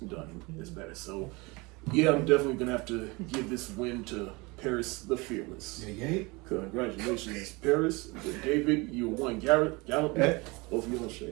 as better. So, yeah, I'm definitely gonna have to give this win to Paris the Fearless. Yeah. Congratulations, Paris. David, you won. Gallup, both of you on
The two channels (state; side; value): quieter; left; 25.4 dB